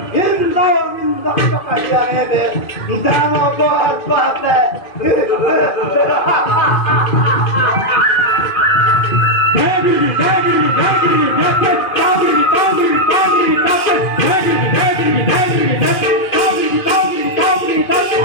নিন্দ কাঢ়ি আনিলে দানৱ পাতে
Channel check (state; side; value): late; right; 2.1 ms